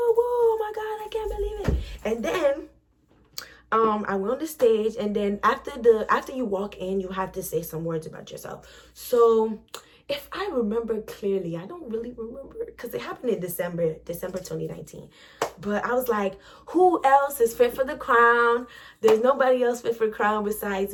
oh my God, I can't believe it. And then I went on the stage, and then after you walk in, you have to say some words about yourself. So if I remember clearly, I don't really remember, because it happened in December 2019. But I was like, who else is fit for the crown? There's nobody else fit for the crown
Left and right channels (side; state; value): both; identical; correlation 1.00